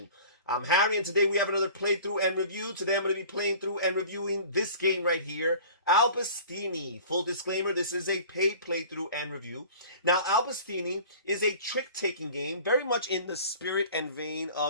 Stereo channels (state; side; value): inverted; both; correlation -0.44